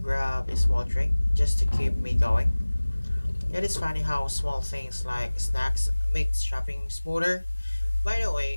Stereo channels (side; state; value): both; inverted; correlation -1.00